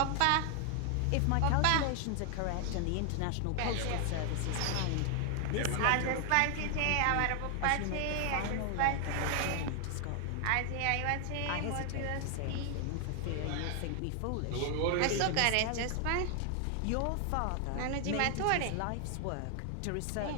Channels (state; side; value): different; both; correlation 0.00